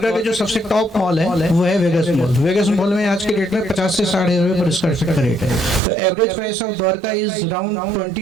के जो सबसे टॉप मॉल है वो है वेगस मॉल. वेगस मॉल में आज के डेट में 50 से 60 रुपये पर स्क्वायर फीट का रेट है. तो average price of Dwarka is around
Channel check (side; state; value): left; drops out; at 5.8 s